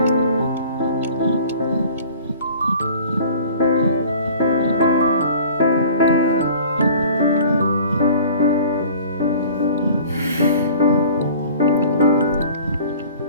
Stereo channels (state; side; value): inverted; both; correlation -0.47